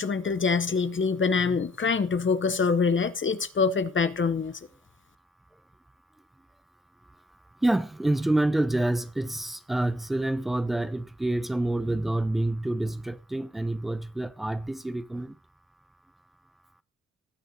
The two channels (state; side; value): normal; both; correlation 0.69